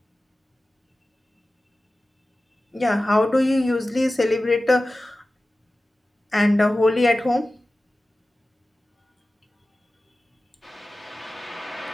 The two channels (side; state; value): both; normal; correlation 0.96